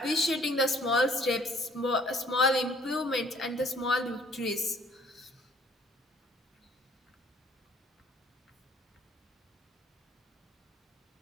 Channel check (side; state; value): both; normal; correlation 0.58